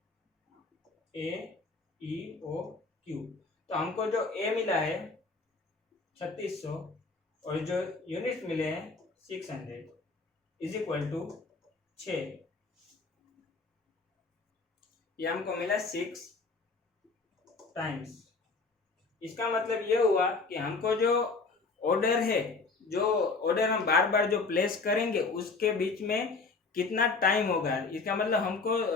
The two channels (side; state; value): right; quieter; 4.1 dB